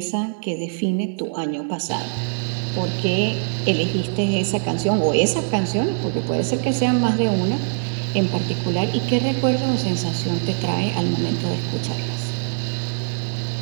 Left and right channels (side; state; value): left; silent; 63 dB below the other